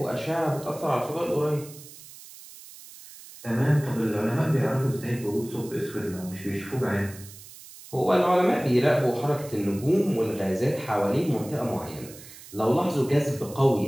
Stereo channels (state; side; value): noise; right; hiss, 18 dB below the sound